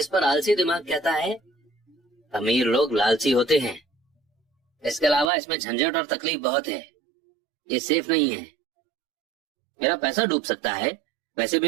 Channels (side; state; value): left; drops out; at 5.3 s